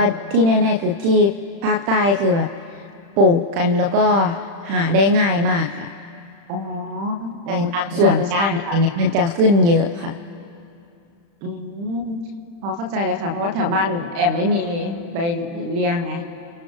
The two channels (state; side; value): late; left; 35 ms